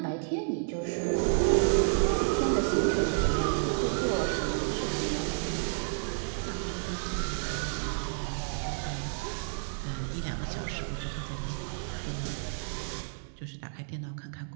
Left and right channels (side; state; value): left; silent; digital silence